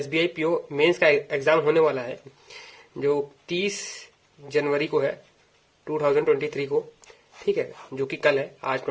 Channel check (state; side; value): identical; both; correlation 1.00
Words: पीओ मेंस का एग्जाम होने वाला है, जो 30 जनवरी को है 2023 को। ठीक है, जो कि कल है, आज